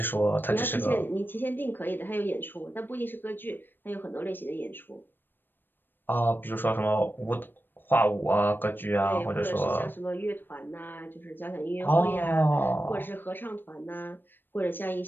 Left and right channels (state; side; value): late; right; 0.095 ms